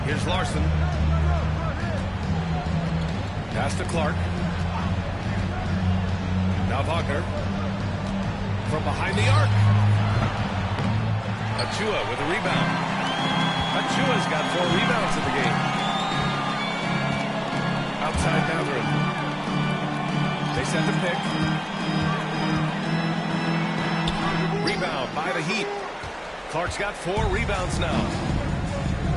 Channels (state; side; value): identical; both; correlation 1.00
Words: Here's Larson. Pass to Clark. Now Wagner. From behind the arc. Achua with a rebound. Achua's got 4 rebounds in the game. Outside Mathurin. They set the pick. Rebound by the Heat. Clark's got 4 rebounds now.